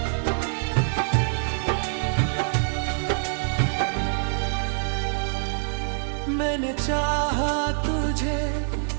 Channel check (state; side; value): silent; left; digital silence